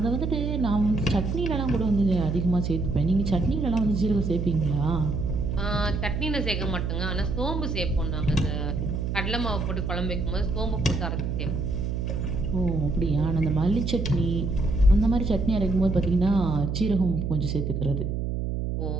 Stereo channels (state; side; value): noise; right; hum, 1 dB below the sound